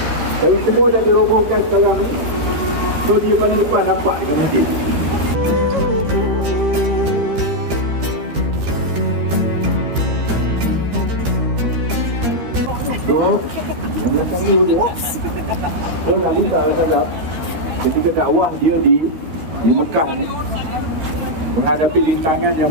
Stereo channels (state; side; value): late; left; 13 ms